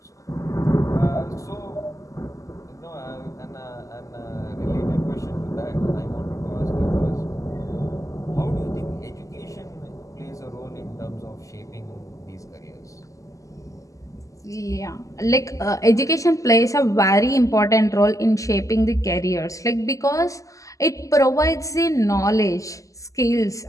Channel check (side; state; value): right; late; 0.16 ms